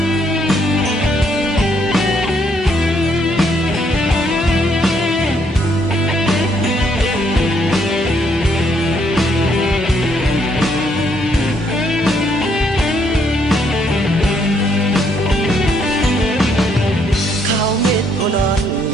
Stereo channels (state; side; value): normal; both; correlation 0.71